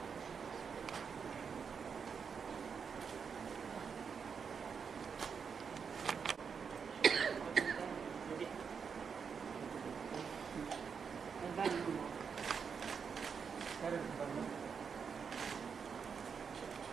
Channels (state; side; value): quieter; left; 6.3 dB